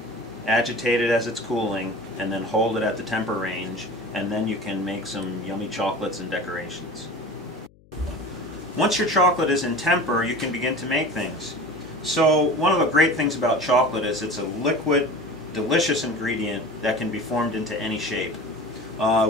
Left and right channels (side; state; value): left; noise; hum, 28 dB below the sound